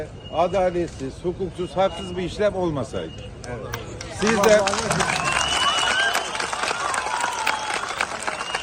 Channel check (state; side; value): identical; both; correlation 1.00